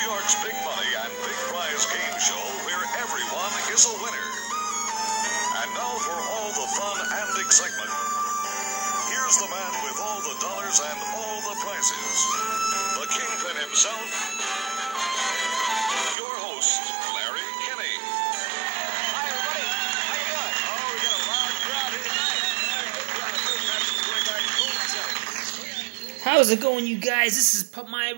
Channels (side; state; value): left; drops out; at 16.2 s